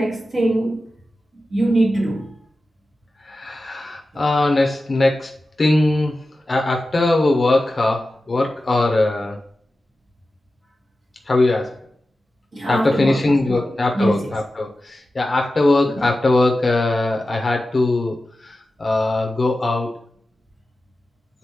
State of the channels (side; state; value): both; normal; correlation 0.93